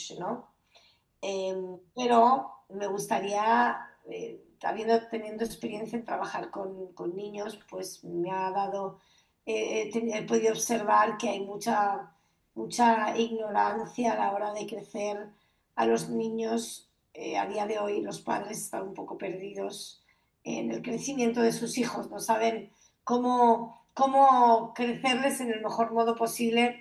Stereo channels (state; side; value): identical; both; correlation 1.00